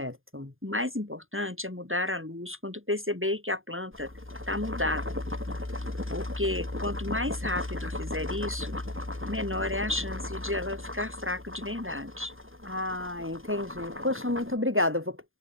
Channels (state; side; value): late; left; 0.60 ms